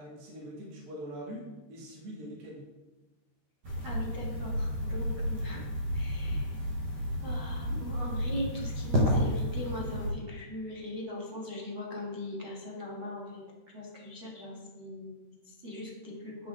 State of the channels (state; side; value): late; left; 13 ms